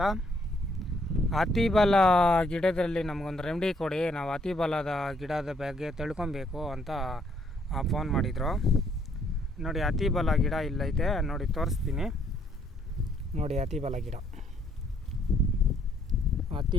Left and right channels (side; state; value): both; normal; correlation 0.69